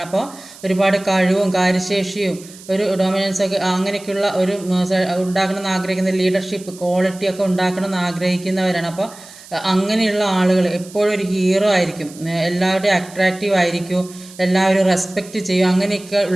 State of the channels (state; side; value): noise; right; hiss, 19 dB below the sound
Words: അപ്പോൾ ഒരുപാട് കഴിവും കാര്യശേഷിയും ഒരു ഡൊമിനൻസ് ഒക്കെ അങ്ങനെയൊക്കെയുള്ള ഒരു ഉണ്ടാക്കണമെന്ന് ആഗ്രഹിക്കുന്ന ലീഡർഷിപ്പ് ക്വാളിറ്റിയൊക്കെ ഉണ്ടാക്കണമെന്ന് ആഗ്രഹിക്കുന്നവരാണ്. അപ്പോൾ അങ്ങനെയുള്ള ആളുകൾ എപ്പോഴും ഒരു ഹീറോ ആയിരിക്കും, എല്ലാവരുടെയും അട്രാക്റ്റീവ് ആയിരിക്കും, എല്ലാവരും റെസ്പെക്റ്റ് ചെയ്യും. അങ്ങനെയൊക്കെ